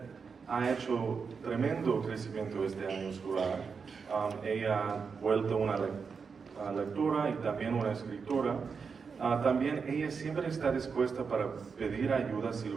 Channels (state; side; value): quieter; left; 5.6 dB